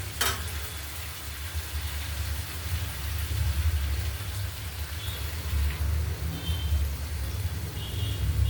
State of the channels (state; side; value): identical; both; correlation 1.00